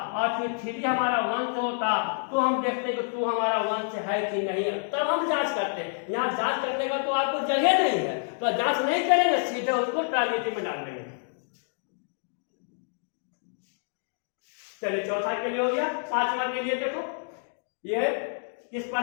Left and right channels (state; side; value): silent; right; digital silence